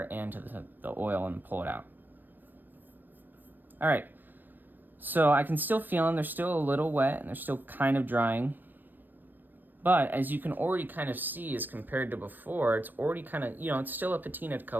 and to the oil and pull it out. All right. So I can still feel them. They're still a little wet, and they're still kind of drying. But as you can already kind of see, as compared to before, it's already kind of, you know, it's still a patina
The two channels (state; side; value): late; left; 0.092 ms